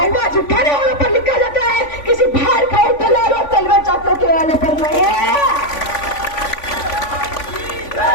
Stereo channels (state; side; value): late; right; 3.5 ms